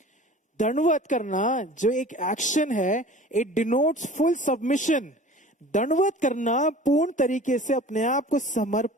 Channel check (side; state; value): both; normal; correlation 0.43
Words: दंडवत करना जो एक एक्शन है, इट डिनोट्स फुल सबमिशन। दंडवत करना पूर्ण तरीके से अपने आप को